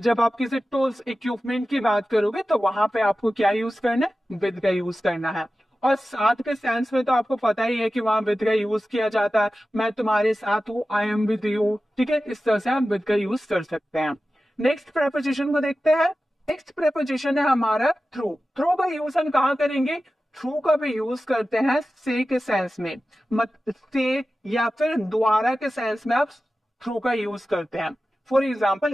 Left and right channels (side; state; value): both; normal; correlation 0.94